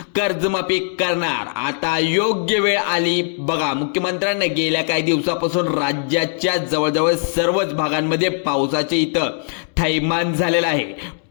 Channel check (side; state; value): right; silent; digital silence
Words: कर्जमाफी करणार। आता योग्य वेळ आली। बघा मुख्यमंत्र्यांनी गेल्या काही दिवसापासून राज्याच्या जवळजवळ सर्वच भागांमध्ये पावसाचे इथं थैमान झालेला आहे।